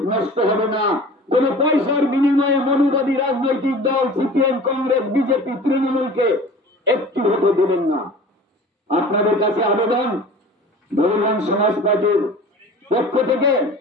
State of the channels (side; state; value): both; normal; correlation 0.41